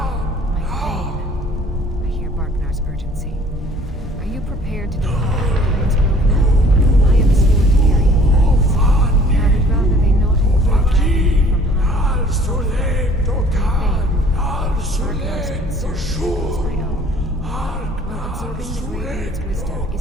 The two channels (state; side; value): normal; both; correlation 0.54